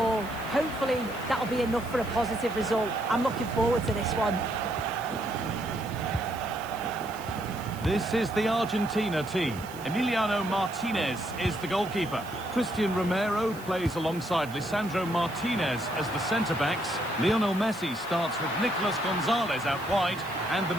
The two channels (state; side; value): noise; right; hiss, 19 dB below the sound